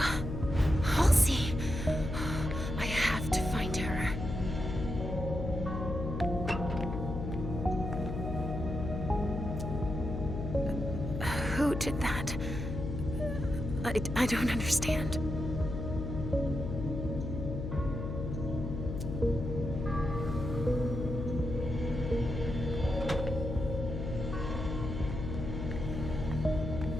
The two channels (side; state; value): left; noise; hum, 4 dB below the sound